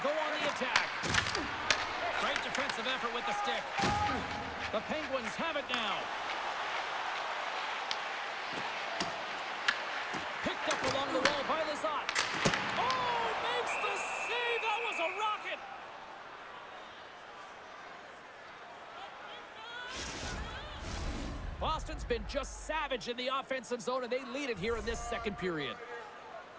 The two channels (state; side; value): identical; both; correlation 1.00